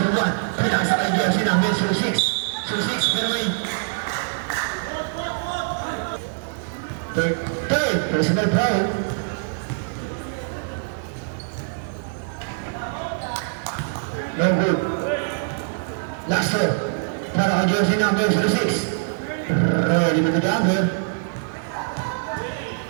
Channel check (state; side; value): silent; left; 63 dB below the other